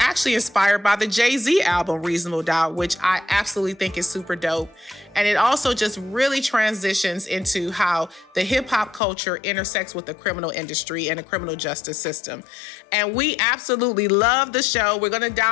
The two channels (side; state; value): right; drops out; at 9.0 s